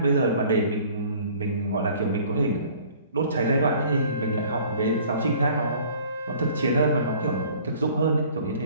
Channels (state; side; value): inverted; both; correlation -0.52